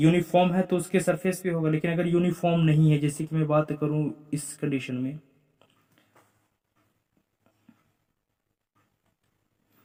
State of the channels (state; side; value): identical; both; correlation 1.00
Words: है तो उसके सरफेस पे होगा, लेकिन अगर यूनिफॉर्म नहीं है, जैसे कि मैं बात करूं इस कंडीशन में,